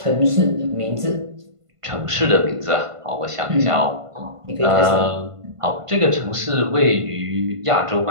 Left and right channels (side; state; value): left; late; 1.5 ms